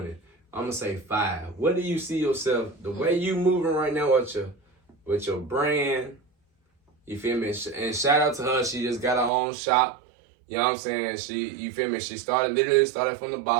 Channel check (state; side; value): drops out; left; at 9.3 s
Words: I'm gonna say 5. What do you see yourself? The way you moving right now with your brand, you feel me? And shout out to her. She just got her own shop. You know what I'm saying? You feel me? She literally started from the